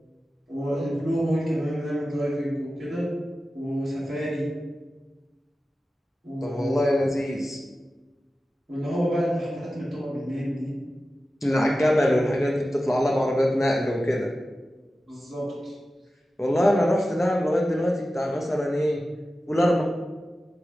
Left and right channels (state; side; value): normal; both; correlation 0.94